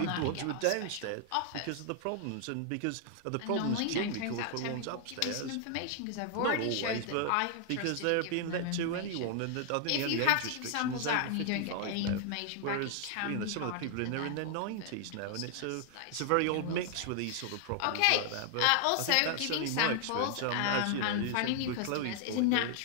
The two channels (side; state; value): both; different; correlation 0.00